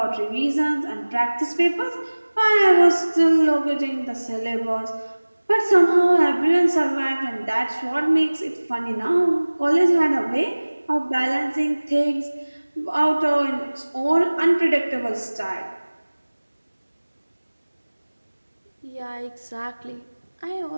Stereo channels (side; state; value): both; inverted; correlation -1.00